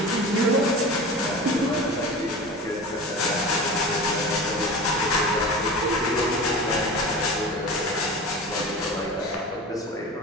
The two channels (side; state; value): both; normal; correlation 0.33